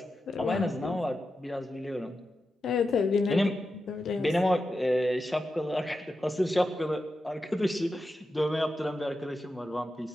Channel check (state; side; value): normal; both; correlation 0.90